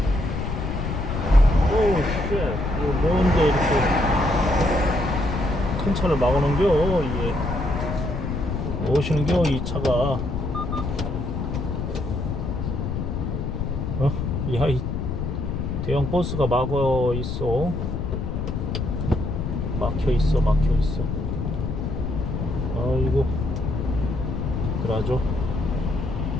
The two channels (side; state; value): left; noise; rumble, 3 dB below the sound